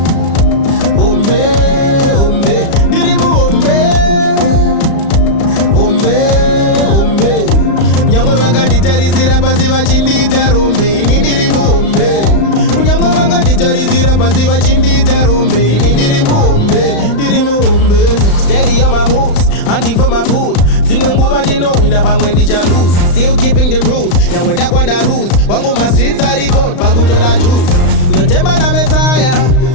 hombe, hombe, Ndirimuhombe, hombe, hombe. Nyangwe vakanditarisira pasi vachindita rombe, ini Ndirimuhombe. Nyangwe vakanditarisira pasi vachindita rombe, ini Ndirimuhombe, Ndirimuhombe. Steady on my moves, hunting for my food. Zimwe nguva ndinowina pamwe ndicha lose. Still keeping the rules, nyangwe ndakwanda rules. Wangu ma streets are record, pakutora juice. Notemba na Messiah,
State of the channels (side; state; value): right; late; 35 ms